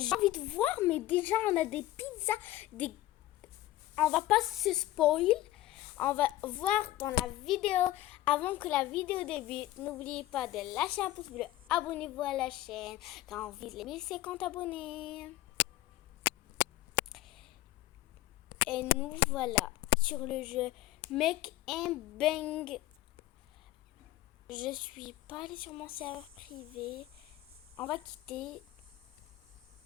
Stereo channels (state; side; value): quieter; right; 15.6 dB